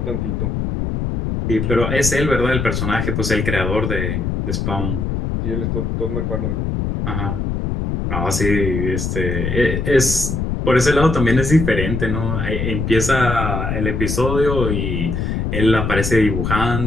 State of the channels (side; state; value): left; noise; rumble, 1 dB below the sound